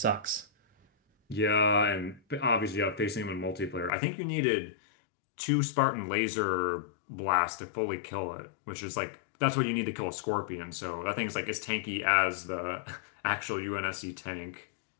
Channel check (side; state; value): right; drops out; at 3.9 s